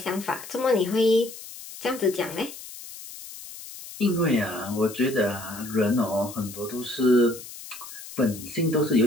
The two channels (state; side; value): noise; left; hiss, 14 dB below the sound